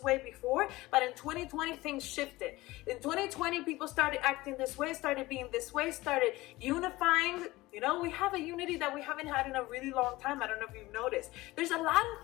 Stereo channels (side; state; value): right; quieter; 19.3 dB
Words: way before, but in 2020 things shifted. In 2020 people started acting this way, started being this way, started unifying. You know, we have a unity that we haven't had in a really long time. I don't know if you've noticed. There's a lot of